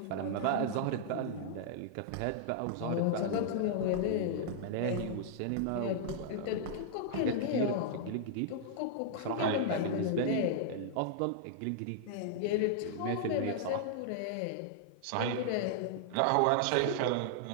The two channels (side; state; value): both; different; correlation -0.01